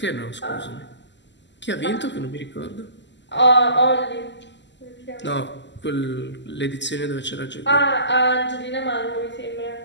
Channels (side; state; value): right; late; 0.52 ms